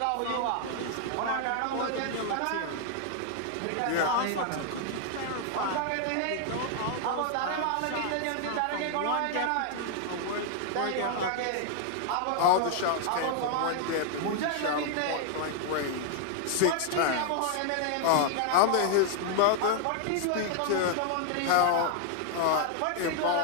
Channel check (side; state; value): both; different; correlation 0.00